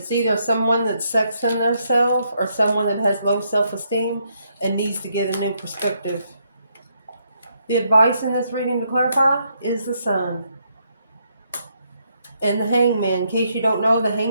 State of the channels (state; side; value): inverted; both; correlation -0.76